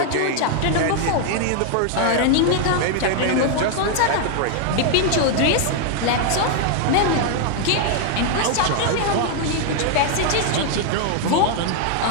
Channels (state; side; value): different; both; correlation 0.00